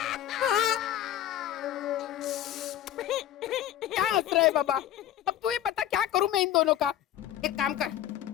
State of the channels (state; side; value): quieter; right; 11.9 dB